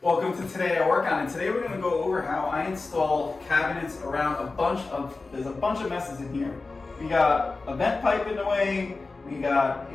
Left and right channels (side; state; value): right; quieter; 3.7 dB